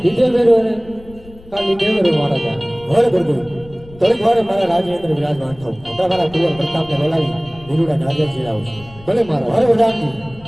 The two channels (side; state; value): left; noise; rumble, 21 dB below the sound